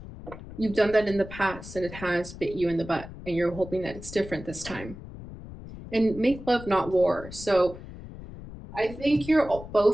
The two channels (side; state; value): left; noise; rumble, 13 dB below the sound